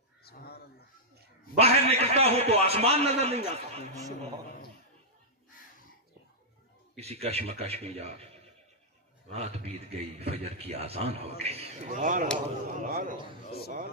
باہر نکلتا ہوں تو آسمان نظر نہیں آتا. کسی کشمکش میں جا رات بیت گئی، فجر کی آذان ہو گئی.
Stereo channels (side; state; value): both; normal; correlation -0.09